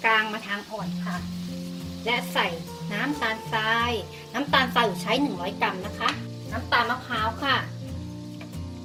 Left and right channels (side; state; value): both; identical; correlation 1.00